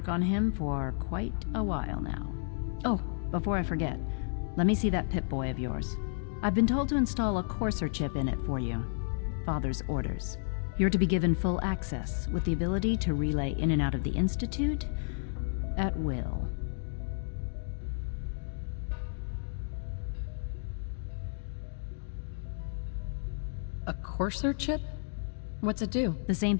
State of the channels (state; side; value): silent; right; digital silence